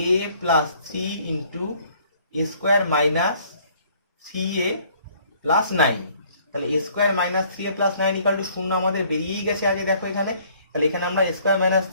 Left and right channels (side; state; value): both; inverted; correlation -0.60